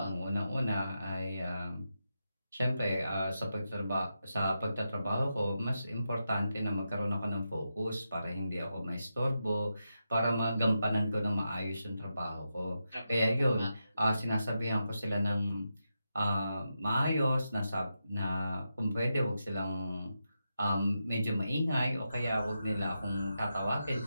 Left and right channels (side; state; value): both; inverted; correlation -0.87